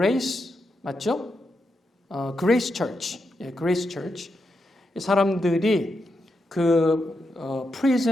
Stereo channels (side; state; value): both; normal; correlation 0.85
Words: 맞죠? 그레이스 처치, 그레이스 처치. 이 사람들이 그